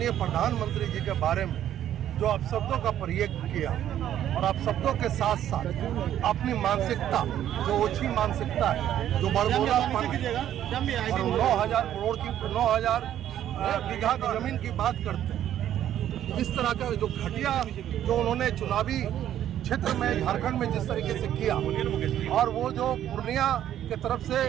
प्रधानमंत्री जी के बारे में जो अपशब्दों का प्रयोग किया और अपशब्दों के साथ साथ अपनी मानसिकता जो ओछी मानसिकता है, जो बड़बोलापन और 9000 करोड़ की 9000 बीघा की जमीन की बात करते हैं, इस तरह का जो घटिया जो उन्होंने चुनावी क्षेत्र में झारखंड में जिस तरीके से किया और वो जो पूर्णिया के तरफ से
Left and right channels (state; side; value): quieter; left; 11.3 dB